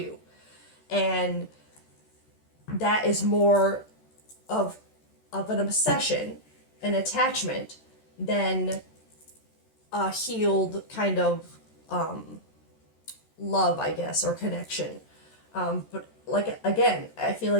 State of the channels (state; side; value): late; right; 13 ms